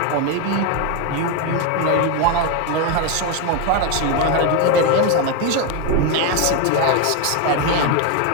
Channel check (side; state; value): both; different; correlation 0.02